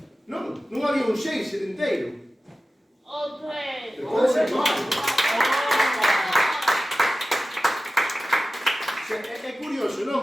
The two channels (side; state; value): both; normal; correlation 0.95